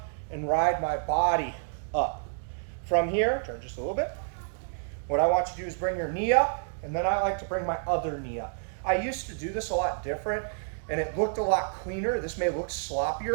and ride my body up. From here, turn just a little bit. What I want you to do is bring your knee up, and then I like to bring my other knee up. I used to do this a lot different, and it looked a lot cleaner. This may look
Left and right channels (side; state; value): left; silent; digital silence